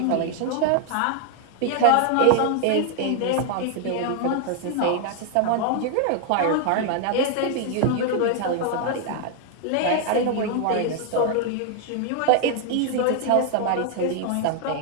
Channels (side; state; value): both; different; correlation 0.00